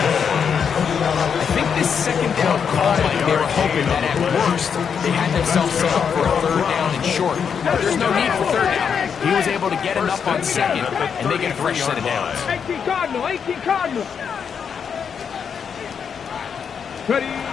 I think this second down call, Mike, they were hoping that at worst they had themselves set up for a third down and short. But there's no need for third down. He was able to get enough on second, and they get a fresh set of downs. 18 Cardinal. 18 Cardinal. Ready.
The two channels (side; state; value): right; quieter; 7.0 dB